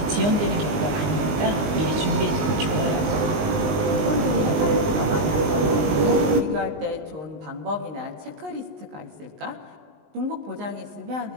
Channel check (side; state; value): left; late; 19 ms